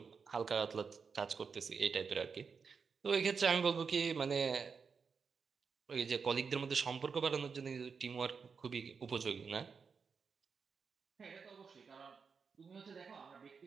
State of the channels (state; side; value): quieter; left; 5.6 dB